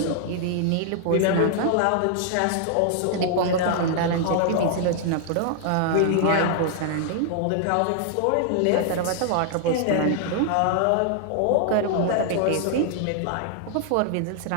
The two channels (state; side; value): different; both; correlation 0.00